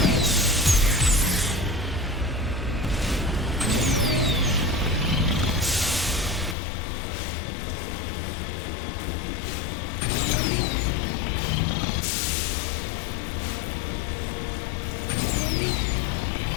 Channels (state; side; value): drops out; right; at 6.6 s